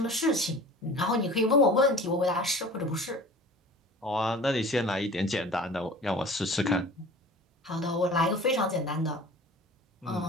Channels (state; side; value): normal; both; correlation 0.42